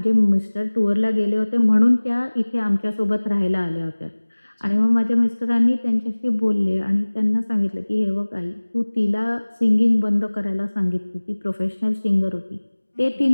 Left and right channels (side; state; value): both; inverted; correlation -1.00